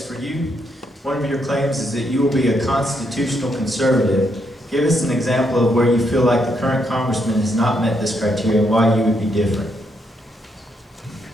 for you. One of your claims is that you will be a constitutional conservative. Give us an example of where you feel like the current congressman has not met this criteria and why you would be different.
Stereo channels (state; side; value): normal; both; correlation 0.77